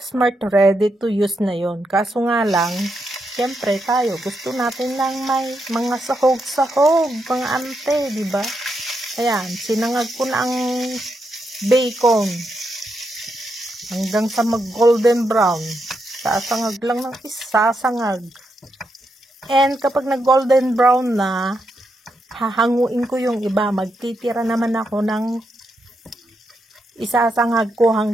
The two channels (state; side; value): normal; both; correlation 0.82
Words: Mart, ready to use na yon. Kaso nga lang, siyempre tayo, gusto natin lang may mga sahog-sahog, mga ante, di ba? Ayan, sinangag ko na ang bacon hanggang sa mag-golden brown. Sasangag lang ng isasangag. And kapag nag-golden brown na, hahanguin ko yung iba. Magtitira naman ako ng isasangag ko